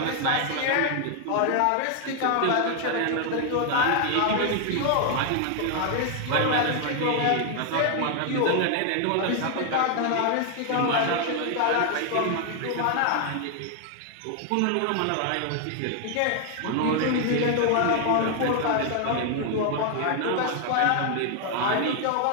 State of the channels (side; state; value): both; different; correlation 0.00